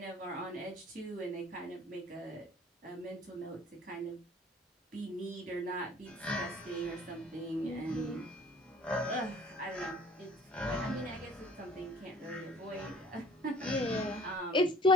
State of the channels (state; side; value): normal; both; correlation 0.52